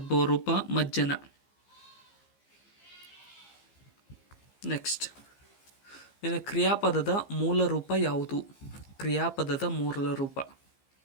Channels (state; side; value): late; right; 15 ms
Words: ರೂಪ ಮಜ್ಜನ. ನೆಕ್ಸ್ಟ್, ಇನ್ನು ಕ್ರಿಯಾಪದದ ಮೂಲ ರೂಪ ಯಾವುದು? ಕ್ರಿಯಾಪದದ ಮೂಲ ರೂಪ